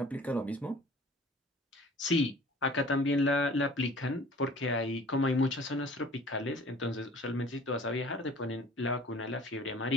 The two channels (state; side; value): normal; both; correlation 0.48